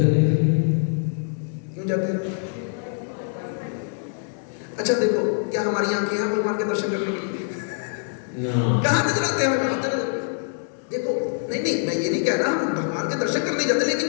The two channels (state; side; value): silent; right; 62 dB below the other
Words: के लिए। क्यों जाते हैं? अच्छा देखो, क्या हमारी आंखें हैं भगवान के दर्शन करने के लिए? ना, कहाँ नजर आते हैं हमें? देखो, नहीं नहीं, मैं ये नहीं कह रहा हम भगवान के दर्शन करने जाते, लेकिन